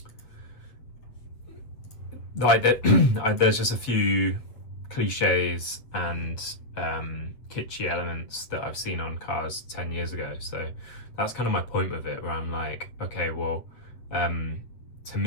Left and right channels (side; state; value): right; late; 7.8 ms